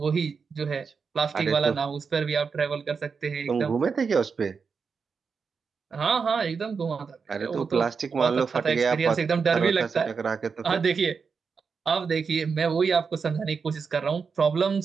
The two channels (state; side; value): quieter; left; 5.5 dB